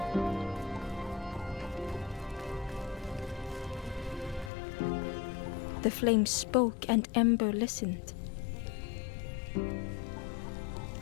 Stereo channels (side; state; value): right; drops out; at 4.5 s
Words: The flame spoke and Ember listened.